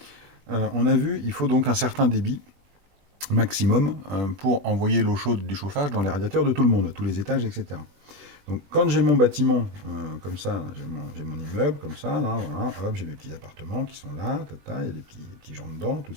On a vu, il faut donc un certain débit maximum pour envoyer l'eau chaude du chauffage dans les radiateurs de tout le monde, à tous les étages, etc. Donc quand j'ai mon bâtiment comme ça, j'ai mon immeuble comme ça, là, voilà, hop, j'ai mes petits appartements qui sont là, tata, il y a des petits gens dedans, tout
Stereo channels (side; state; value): left; late; 20 ms